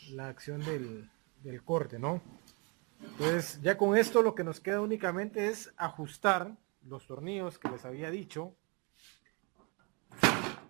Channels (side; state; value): left; quieter; 32.1 dB